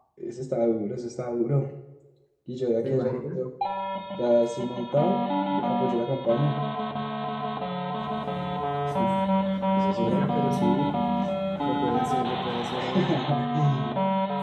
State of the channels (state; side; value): identical; both; correlation 1.00